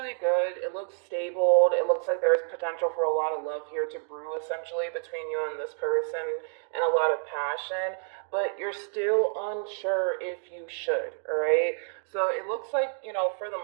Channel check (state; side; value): silent; left; 57 dB below the other